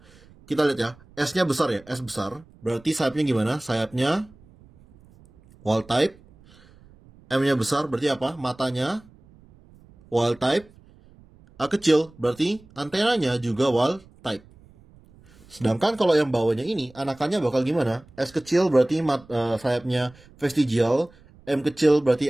Kita lihat ya, S-nya besar ya, S besar. Berarti sayapnya gimana? Sayapnya wild type. M-nya besar, berarti apa? Matanya wild type. A kecil, berarti antenanya juga wild type. Sedangkan kalau yang bawahnya ini, anakannya bakal gimana? S kecil berarti sayapnya vestigial, M kecil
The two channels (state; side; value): noise; right; rumble, 26 dB below the sound